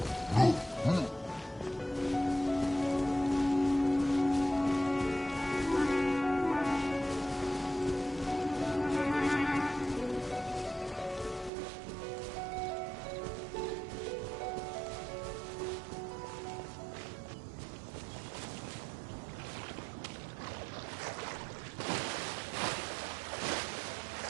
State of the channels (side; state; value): left; drops out; at 11.5 s